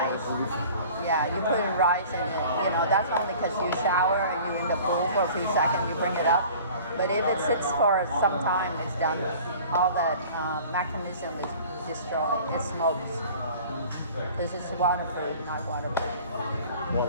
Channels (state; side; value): inverted; both; correlation -0.45